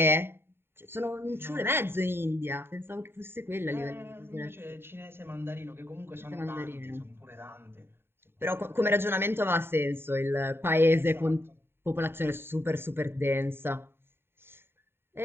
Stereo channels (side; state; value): left; late; 0.11 ms